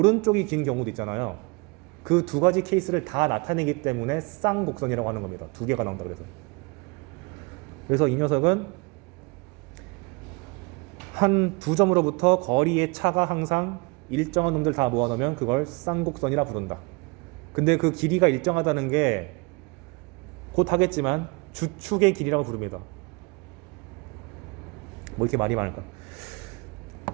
긴 경우도 있잖아요. 그 두 가지 케이스를 다 나타내기 때문에 쌍곡선이라고 하는 겁니다. 2개가 나온다 그래서 이 녀석은 한 두 점으로부터 거리의 차가 항상 일정한 놈들 다 모아놓으면 그걸 쌍곡선이라 부른다. 근데 그 길이가 일정하다는 게 곧 하겠지만 주축의 길이라고 부릅니다. 뭐 이렇게 말이 많을까?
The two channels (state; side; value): quieter; left; 28.6 dB